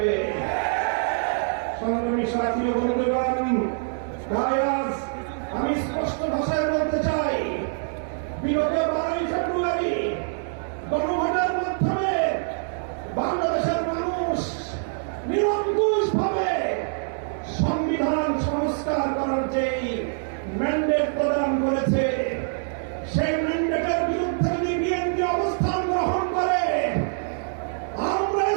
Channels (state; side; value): silent; left; digital silence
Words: সংগ্রামী সাথী ও বন্ধুগণ, তাই আজ আমি স্পষ্ট ভাষায় বলতে চাই, বিগত 12ই ফেব্রুয়ারি গণভোটের মাধ্যমে বাংলাদেশের মানুষ নিরঙ্কুশভাবে সংবিধান সংস্কার করার যেই ম্যান্ডেট প্রদান করেছে, সেই ম্যান্ডেটের বিরুদ্ধে যদি বিএনপি অবস্থান গ্রহণ করে, আমরা